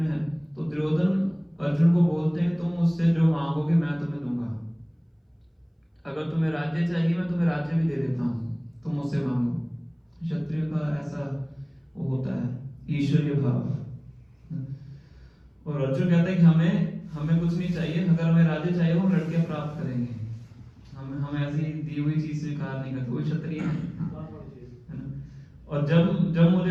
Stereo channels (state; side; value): identical; both; correlation 1.00